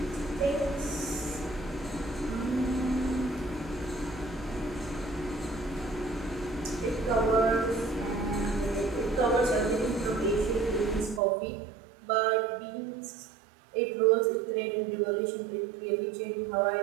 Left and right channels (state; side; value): drops out; left; at 11.2 s